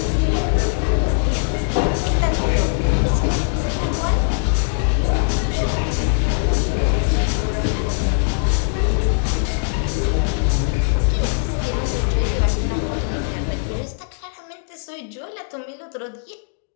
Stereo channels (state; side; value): silent; right; digital silence